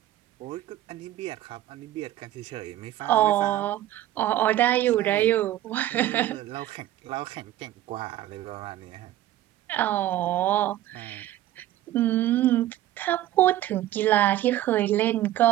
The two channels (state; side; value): quieter; left; 13.9 dB